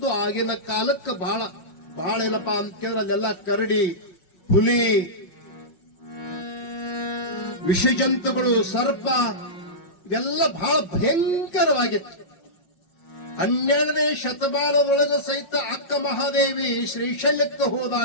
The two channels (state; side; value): late; right; 5.4 ms